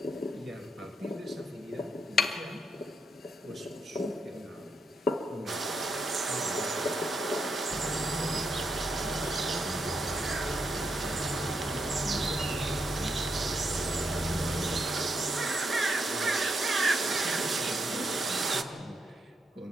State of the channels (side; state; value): both; normal; correlation 0.80